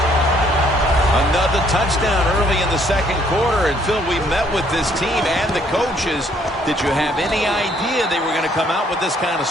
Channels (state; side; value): normal; both; correlation 0.66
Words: Another touchdown early in the second quarter. And, Phil, we met with this team and the coaches. Did you have any idea they were going to come out with this kind of